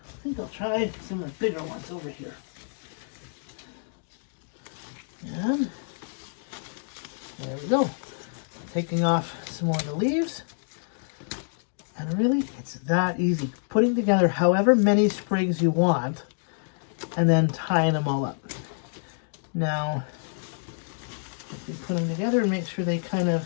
think I'll try some of the bigger ones over here. And there we go. Taking off some more of the leaves. And really, it's that easy. Putting together however many sprigs you want and then tying them all up. Now, if you put them together and make sure they kind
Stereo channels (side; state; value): right; silent; digital silence